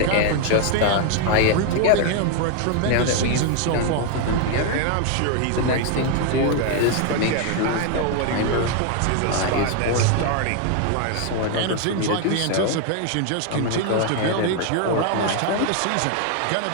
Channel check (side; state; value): both; different; correlation 0.00